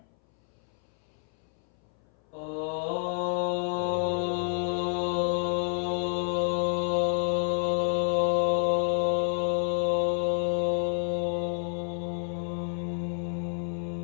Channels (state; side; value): silent; right; 58 dB below the other